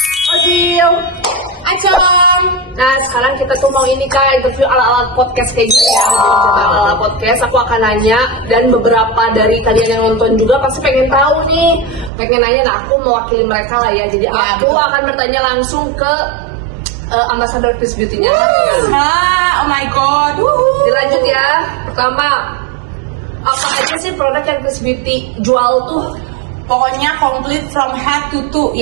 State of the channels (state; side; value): drops out; left; at 12.1 s